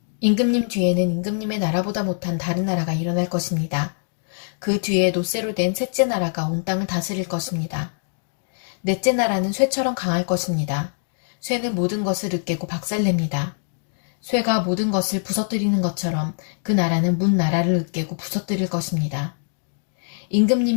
임금님 뒤에는 임금님의 나라보다 못한 다른 나라가 일어날 것입니다. 그 뒤에 노쇠로 된 셋째 나라가 온 땅을 다스릴 것입니다. 넷째 나라는 쇠처럼 강할 것입니다. 쇠는 모든 것을 으깨고 박살냅니다. 쇠가 모든 것을 부서뜨리는 것처럼 그 나라는 문 나라를 으깨고 부서뜨릴 것입니다.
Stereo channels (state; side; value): silent; right; digital silence